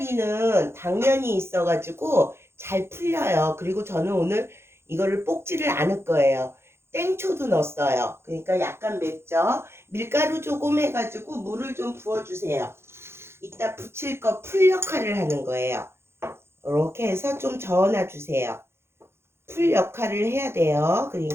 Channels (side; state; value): left; late; 0.12 ms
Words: 당면이 있어가지고 잘 풀려요. 그리고 저는 오늘 이거를 볶지를 않을 거예요. 땡초도 넣었어요. 그러니까 약간 맵죠. 밀가루 조금 해가지고 물을 좀 부어주세요. 이따 부칠 거 풀 역할을 하는 거예요. 이렇게 해서 좀 저어놔 주세요. 풀 역할을 해야 돼요.